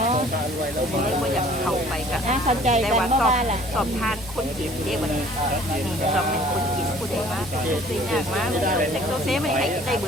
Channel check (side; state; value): both; normal; correlation 0.53